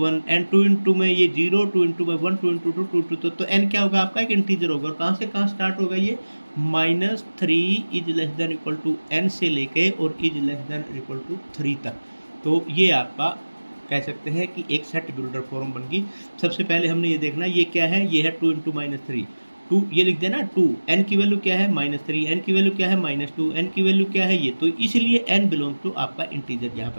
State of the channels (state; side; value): inverted; both; correlation -1.00